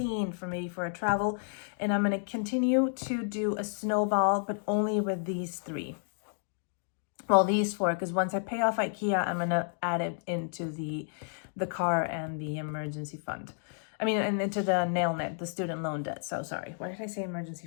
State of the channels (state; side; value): silent; right; digital silence